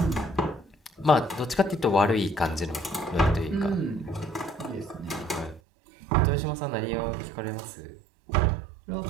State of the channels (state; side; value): drops out; left; at 5.6 s